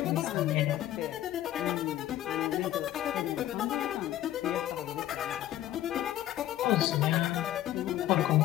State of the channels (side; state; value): right; quieter; 13.3 dB